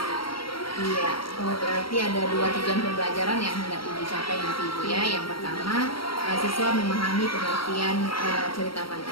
Iya, berarti ada 2 tujuan pembelajaran yang hendak dicapai nanti Ibu ya. Yang pertama, siswa memahami pengertian cerita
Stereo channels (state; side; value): late; right; 0.74 ms